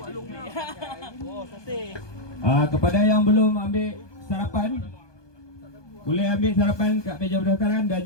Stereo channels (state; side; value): late; right; 1.2 ms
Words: Alung ni. Oh, sasih. Kepada yang belum ambil sarapan, boleh ambil sarapan kat meja pendaftaran dan